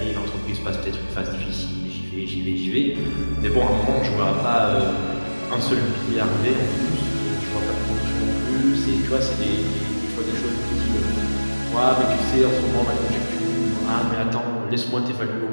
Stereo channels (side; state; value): both; inverted; correlation -1.00